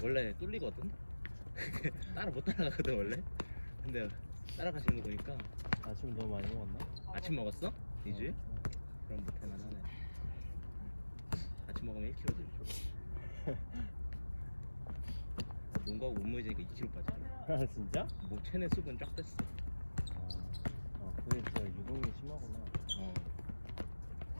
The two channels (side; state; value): both; inverted; correlation -1.00